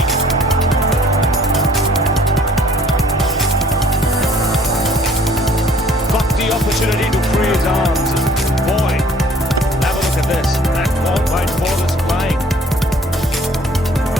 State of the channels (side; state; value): both; normal; correlation 0.56